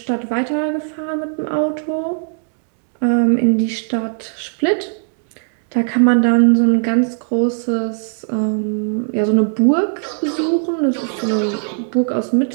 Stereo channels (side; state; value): left; silent; digital silence